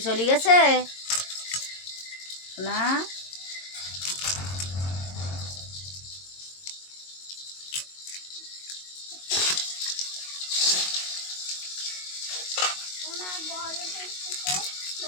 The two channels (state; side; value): late; right; 22 ms